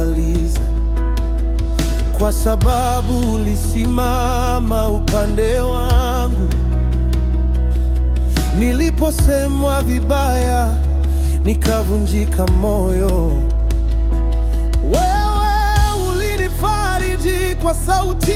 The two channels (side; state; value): both; identical; correlation 1.00